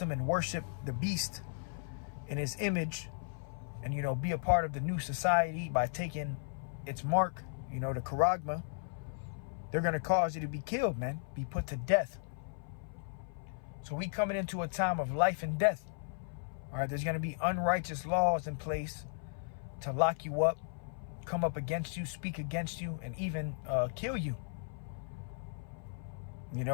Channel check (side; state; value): right; silent; 54 dB below the other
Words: and worship the beast in his image, and, you know, be a part of the new society by taking its mark, you know, the charagma, they're going to cause you to be killed, man, be put to death. So we coming into a time of life and death. All right, there's going to be unrighteous laws in place to lock you up, come up against you, speak against you, and even kill you. You